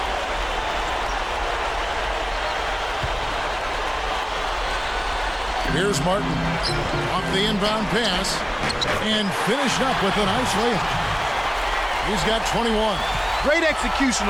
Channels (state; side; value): identical; both; correlation 1.00